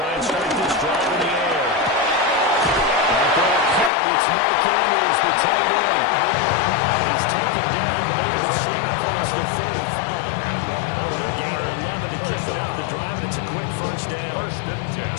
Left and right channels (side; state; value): right; drops out; at 3.9 s